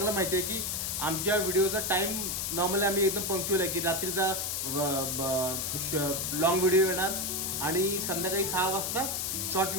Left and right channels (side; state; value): left; noise; hiss, 1 dB below the sound